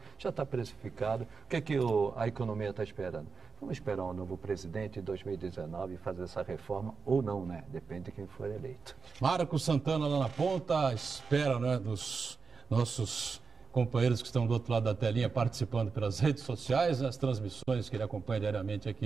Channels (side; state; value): left; quieter; 4.9 dB